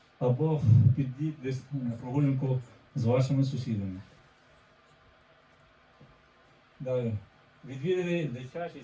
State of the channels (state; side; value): identical; both; correlation 1.00